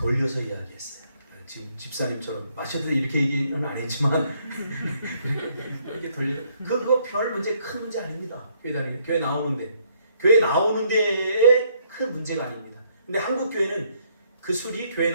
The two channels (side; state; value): both; inverted; correlation -0.69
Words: 이야기했어요. 지금 집사님처럼 마셔도 이렇게 얘기는 안 했지만 이렇게 돌려. 그거 별 문제, 큰 문제 아닙니다. 교회 나오는데, 교회 나오는 데에 큰 문제가 아닙니다. 근데 한국 교회는 그 술이 교회